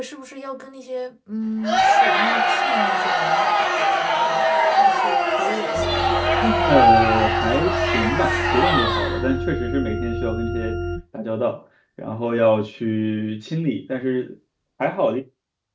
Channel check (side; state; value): both; identical; correlation 1.00